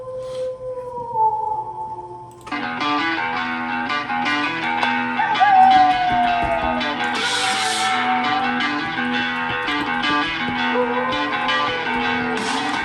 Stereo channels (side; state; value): both; identical; correlation 1.00